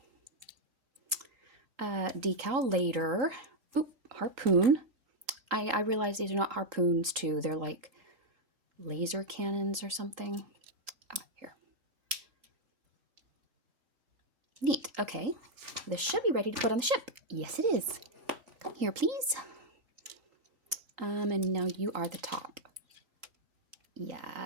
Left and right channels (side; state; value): left; late; 3.8 ms